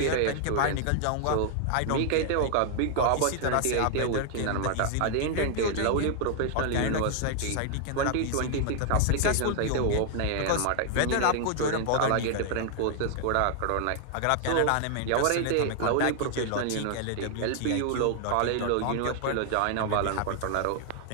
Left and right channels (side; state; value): both; different; correlation 0.00